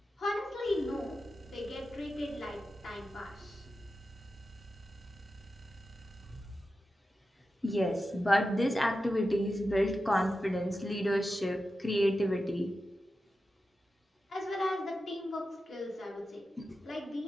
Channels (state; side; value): normal; both; correlation 0.91